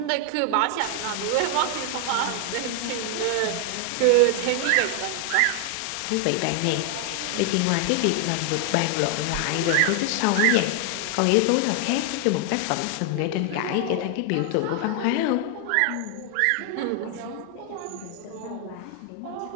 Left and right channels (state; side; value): different; both; correlation 0.00